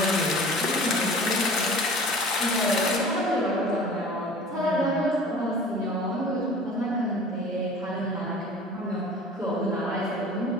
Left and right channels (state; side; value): normal; both; correlation 0.43